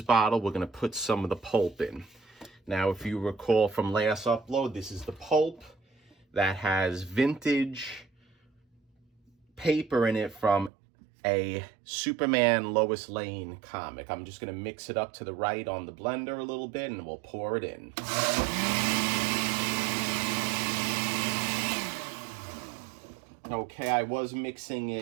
bottle. We're gonna put some of the pulp in. Now, if you recall from last upload, this is the pulp that has vintage paper in it from a Superman Lois Lane comic. I'm just gonna mix it up to the right on the blender a little bit, and we'll pour it in. Okay, I was mixing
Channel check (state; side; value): drops out; left; at 10.7 s